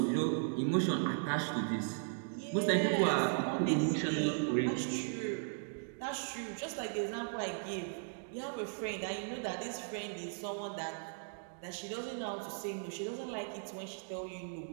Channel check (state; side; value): silent; left; digital silence